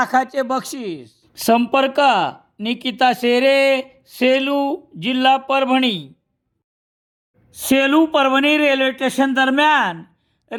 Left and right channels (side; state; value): both; identical; correlation 1.00